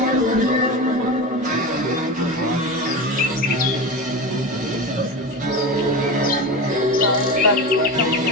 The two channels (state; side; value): normal; both; correlation 0.24